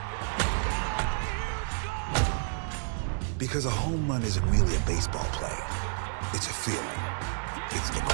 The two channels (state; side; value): silent; left; digital silence